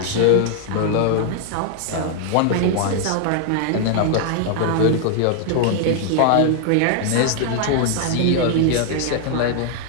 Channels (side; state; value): both; different; correlation 0.00